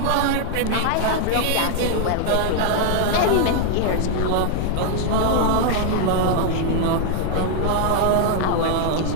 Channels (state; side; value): different; both; correlation 0.00